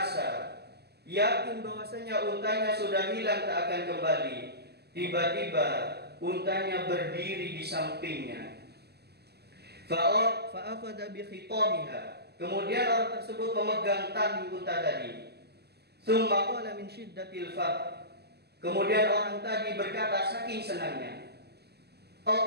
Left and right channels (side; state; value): left; late; 0.47 ms